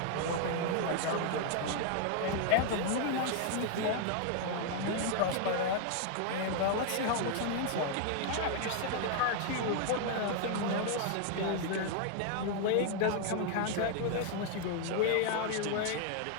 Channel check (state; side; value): different; both; correlation 0.00